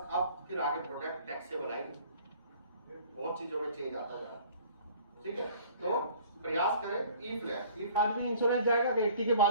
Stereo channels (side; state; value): both; inverted; correlation -0.51